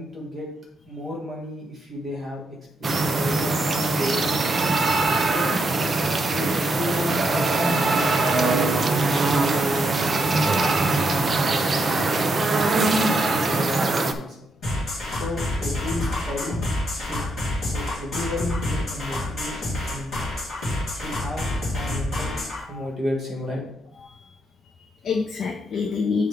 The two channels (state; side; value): normal; both; correlation 0.79